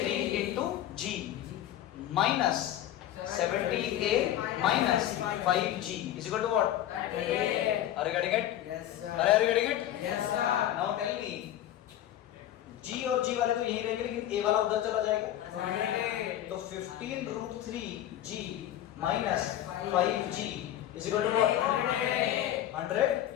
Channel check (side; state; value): right; quieter; 12.3 dB